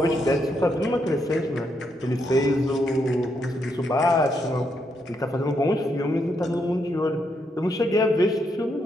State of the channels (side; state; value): both; normal; correlation 0.78